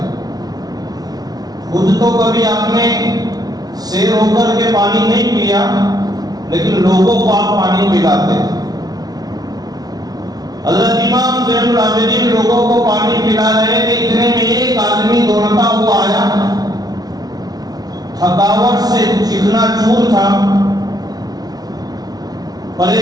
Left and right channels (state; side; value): late; left; 0.19 ms